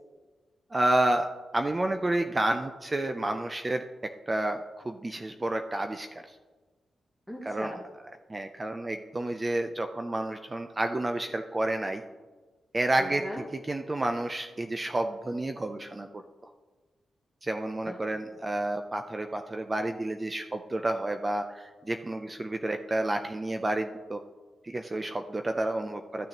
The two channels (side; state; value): both; normal; correlation 0.95